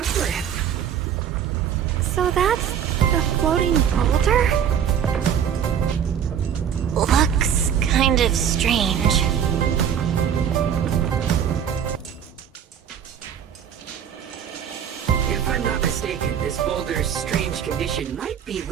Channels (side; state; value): left; quieter; 8.7 dB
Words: So that's the floating boulder? Looks kind of strange. If I'm not mistaken, this boulder's strange condition might be